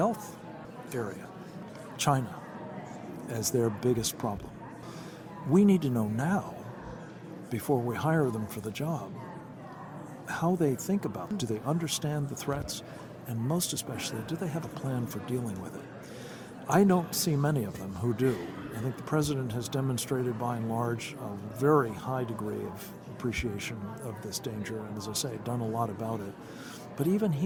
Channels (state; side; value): identical; both; correlation 1.00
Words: area, China as their biggest problem. We need to know now, before we hire them for the job, how they think about it. Do they understand the threats? And most especially, do they have a plan for dealing with it? I don't see many of them who do. I think the president has demonstrated, by and large, a very high degree of appreciation of this danger, and as I say, done a lot about it. But even